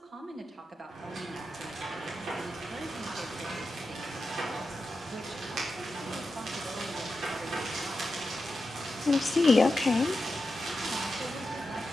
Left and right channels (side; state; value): both; normal; correlation 0.90